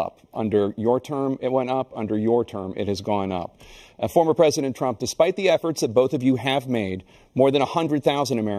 Under your term, it went up. Under your term, it has gone up. Former President Trump, despite the efforts that both of you have made, more than 100,000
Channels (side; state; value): both; identical; correlation 1.00